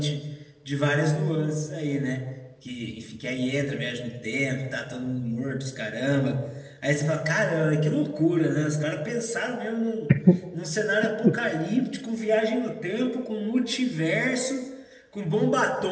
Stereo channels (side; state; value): both; identical; correlation 1.00